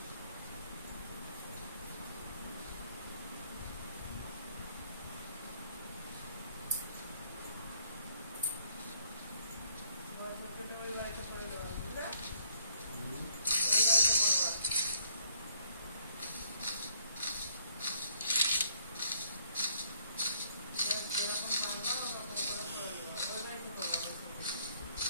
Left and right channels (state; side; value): inverted; both; correlation -0.65